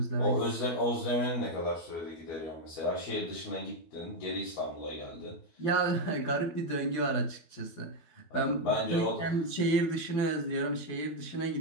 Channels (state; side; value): late; right; 12 ms